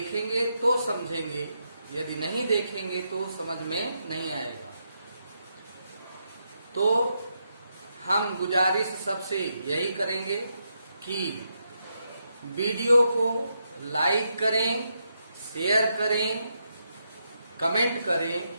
तो समझेंगे, यदि नहीं देखेंगे तो समझ में नहीं आएगा। तो हम गुजारिश सबसे यही करेंगे कि वीडियो को लाइक करें, शेयर करें, कमेंट करें,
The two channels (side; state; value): both; inverted; correlation -0.82